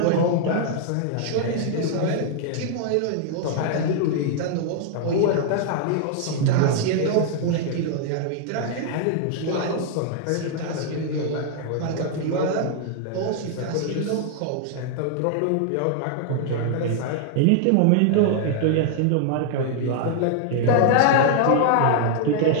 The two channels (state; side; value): different; both; correlation 0.00